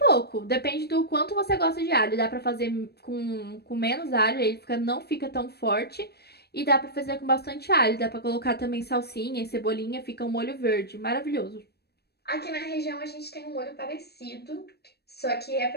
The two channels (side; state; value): right; late; 0.47 ms